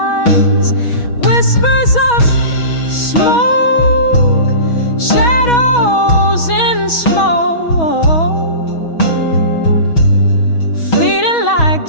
Whispers of smoke, shadows in smoke, fleeting like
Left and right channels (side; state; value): right; late; 6.2 ms